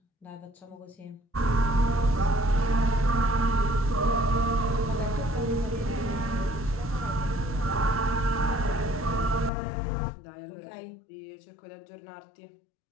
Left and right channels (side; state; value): right; drops out; at 9.5 s